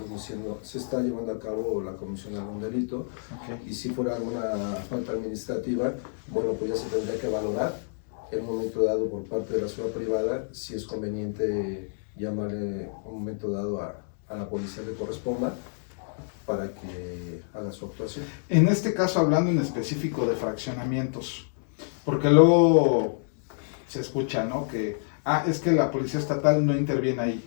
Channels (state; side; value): silent; right; digital silence